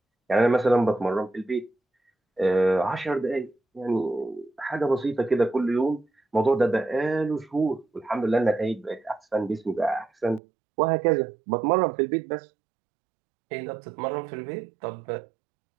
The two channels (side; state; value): left; drops out; at 10.4 s